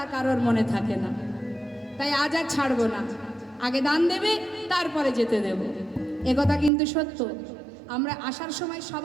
কারোর মনে থাকে না। তাই আজ আর ছাড়বো না, আগে দান দেবে তারপরে যেতে দেব। একথা কিন্তু সত্য। আমরা আসার সময়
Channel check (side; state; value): left; drops out; at 6.7 s